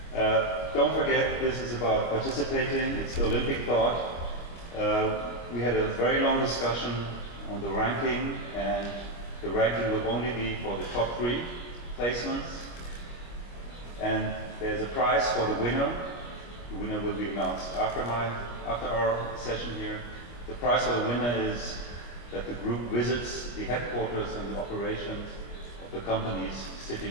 Don't forget, this is about participating, it's the Olympic thought. We had a very long discussion on the ranking, and the ranking will only be for the top 3 placements. And there's a prize for the winner. The winner will be announced after our session here. The prize for the winner is that the group visits the headquarters and the operations of the companies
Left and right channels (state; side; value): late; right; 25 ms